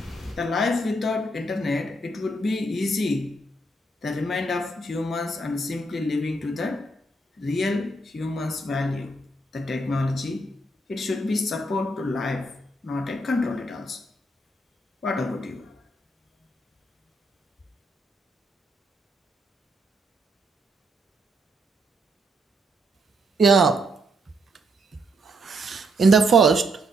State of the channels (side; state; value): both; normal; correlation 0.76